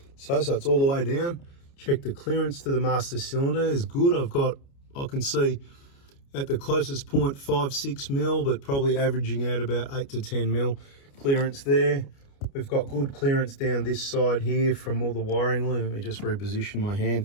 so it's all the way down. Check the clearance to the master cylinder is good. I can see at the closest point 5-6 mil, but probably averaging out about 8 to 10 mil clearance there. We've got good clearance down this side here from all the wiring. Let me just reposition my hand,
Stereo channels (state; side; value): late; right; 29 ms